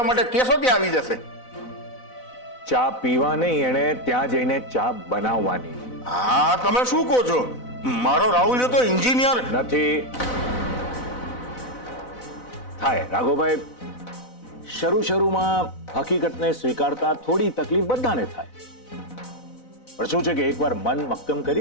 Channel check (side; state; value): right; late; 4.0 ms